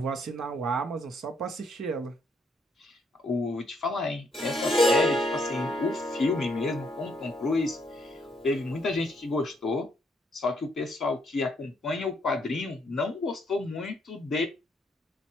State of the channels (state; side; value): normal; both; correlation 0.72